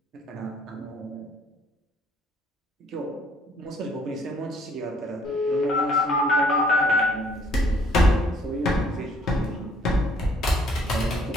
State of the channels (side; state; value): both; normal; correlation 0.62